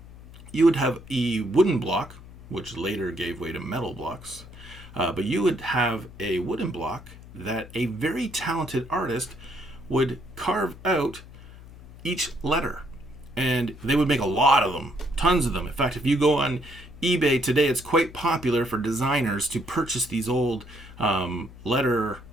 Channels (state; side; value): noise; left; hum, 18 dB below the sound